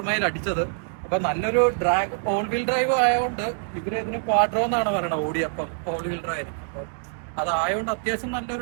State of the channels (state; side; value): silent; left; 62 dB below the other